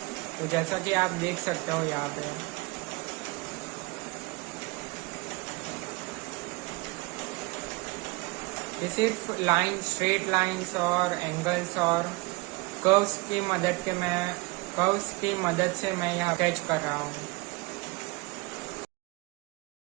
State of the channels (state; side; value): quieter; left; 25.2 dB